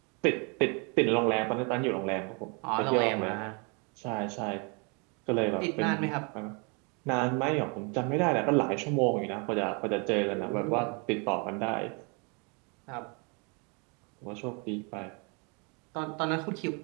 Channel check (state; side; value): quieter; left; 33.2 dB